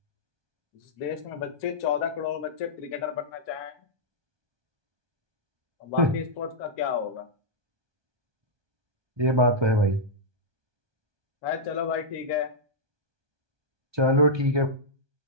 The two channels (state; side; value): late; left; 1.2 ms